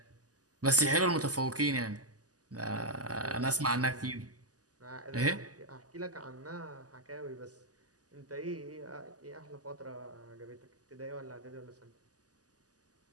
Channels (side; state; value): left; late; 0.67 ms